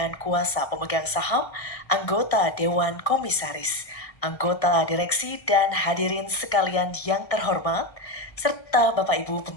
kuasa pemegang saham, anggota Dewan Komisaris, anggota direksi dan hadirin sekalian yang terhormat, serta Bapak Ibu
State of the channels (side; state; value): right; late; 1.6 ms